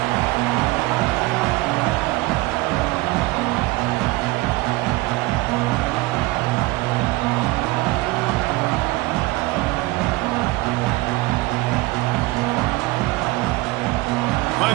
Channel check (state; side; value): quieter; left; 21.2 dB